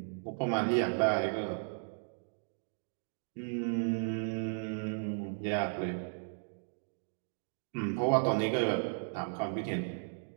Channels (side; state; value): left; silent; digital silence